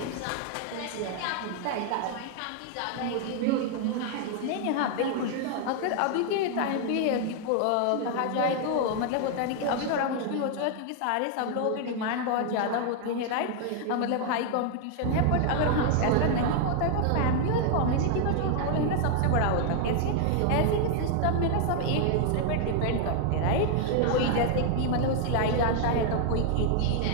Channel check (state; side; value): different; both; correlation 0.00